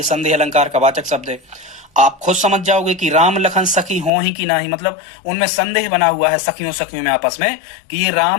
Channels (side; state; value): right; drops out; at 4.1 s